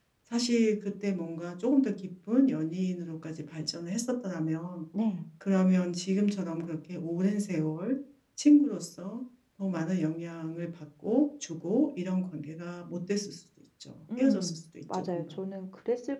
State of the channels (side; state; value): both; identical; correlation 1.00